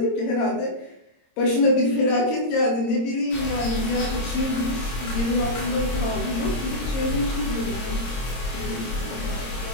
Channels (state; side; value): late; right; 26 ms